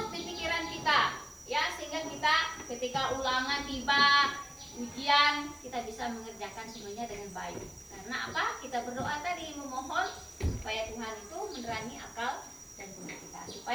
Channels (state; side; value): noise; right; hiss, 25 dB below the sound